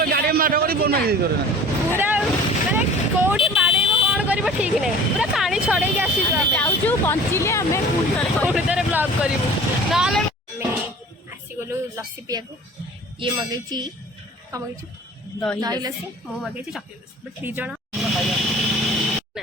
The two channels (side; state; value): both; normal; correlation 0.44